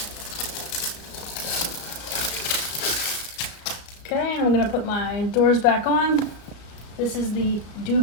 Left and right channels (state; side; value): late; right; 34 ms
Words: Okay, and I'm gonna put my doors back on. This is the